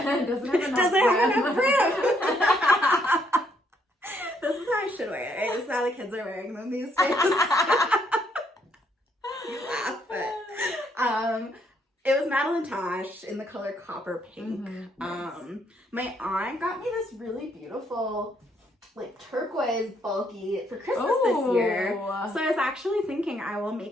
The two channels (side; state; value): both; normal; correlation 0.72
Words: Doesn't have enough Doesn't brim. have enough brim. This is how I should wear it. Right? This is how the kids are wearing them these days. You laugh, but it was Madeline Tosh in the color copper pink. Nice. My aunt got me this really beautiful, like turquoise bulky for Christmas this year. So I was actually thinking I will